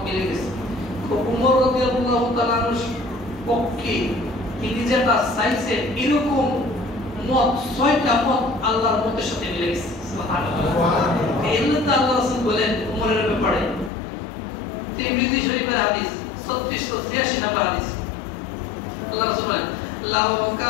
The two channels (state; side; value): drops out; right; at 13.9 s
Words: মিলে গেছে। উমর রাদিয়াল্লাহু তাআলার পক্ষে তিনি যেটা চাইছেন এরকম মত 6টা মত আল্লাহর মতের সাথে মিলে গেছে। সুবহানাল্লাহ। এই জন্য আল্লাহ রাসূল বলেন উমরের ব্যাপারে, তিরমিজি শরীফের হাদিস 3683 নম্বর হাদিস, আল্লাহ রাসূল বলেন, লাউ